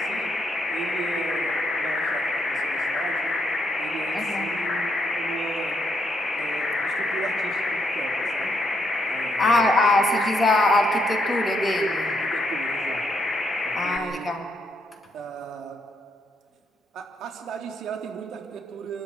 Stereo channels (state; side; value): normal; both; correlation 0.76